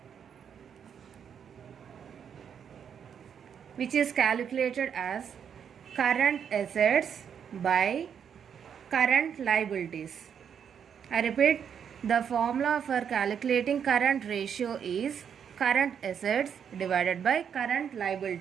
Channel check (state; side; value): quieter; left; 7.8 dB